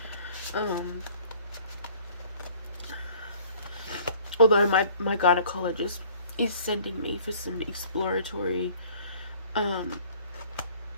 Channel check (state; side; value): inverted; both; correlation -0.54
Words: Although my gynecologist is sending me for some exploratory